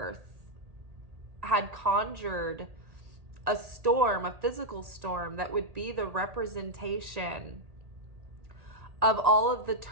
had conjured a storm, a physical storm that would be the representation of all of the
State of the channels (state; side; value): late; left; 1.8 ms